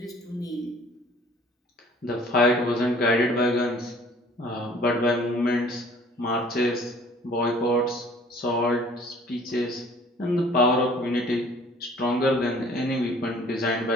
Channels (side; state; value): both; normal; correlation 0.53